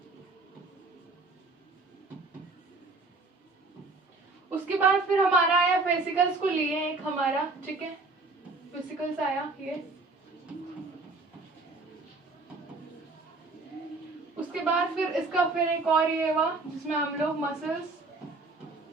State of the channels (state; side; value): quieter; left; 3.6 dB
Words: उसके बाद फिर हमारा आया फेसिकल्स को लिए एक हमारा, ठीक है, फेसिकल्स आया ये। उसके बाद फिर इसका फिर एक और ये हुआ जिसमें हम लोग